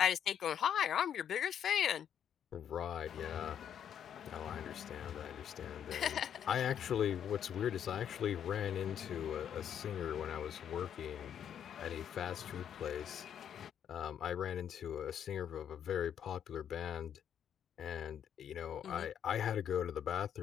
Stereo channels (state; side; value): quieter; right; 9.1 dB